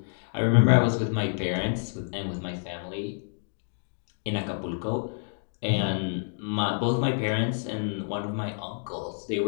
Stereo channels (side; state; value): right; silent; digital silence